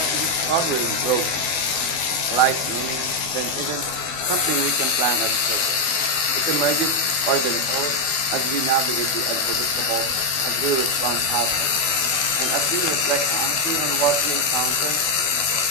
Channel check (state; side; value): late; right; 12 ms